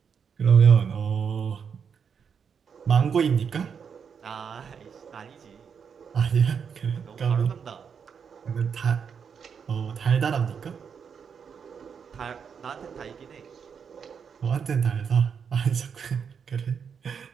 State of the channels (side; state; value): left; quieter; 6.8 dB